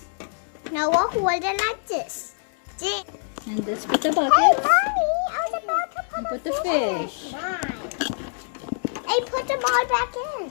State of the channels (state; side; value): silent; right; 62 dB below the other